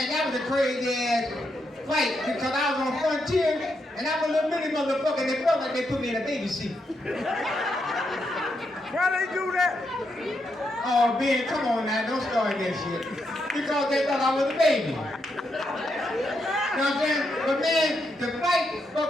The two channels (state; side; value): normal; both; correlation 0.81